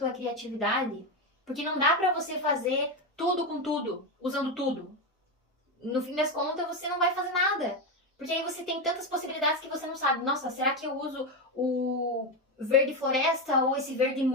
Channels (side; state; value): both; normal; correlation 0.12